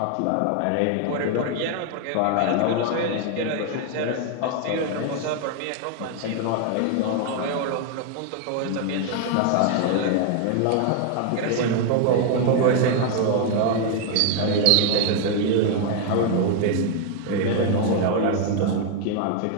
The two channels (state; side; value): different; both; correlation 0.00